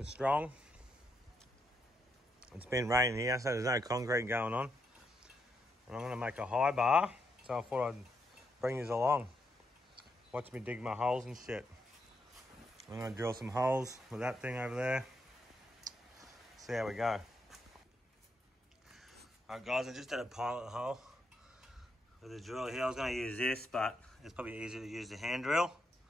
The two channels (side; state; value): both; normal; correlation 0.80